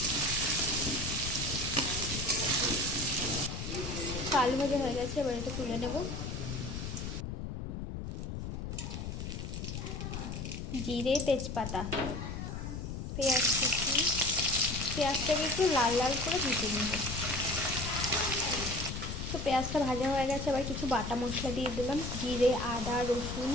আলু ভাজা হয়ে গেছে, এবার এটা তুলে নেব। জিরে তেজপাতা পেঁয়াজ কুচি, পেঁয়াজটাকে একটু লাল লাল করে ভেজে নেব। তো পেঁয়াজটা ভাজা হয়ে গেছে, এবার কিছু বাটা মশলা দিয়ে দিলাম, জিরে আদা রসুন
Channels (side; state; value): left; noise; rumble, 5 dB below the sound